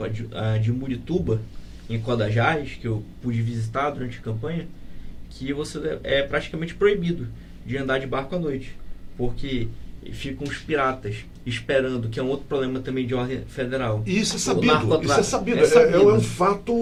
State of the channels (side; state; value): both; identical; correlation 1.00